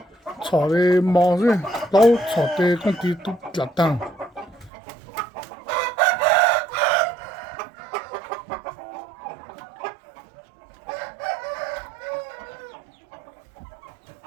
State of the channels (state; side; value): drops out; left; at 4.7 s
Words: 炒的毛子，老炒的工地都拉当。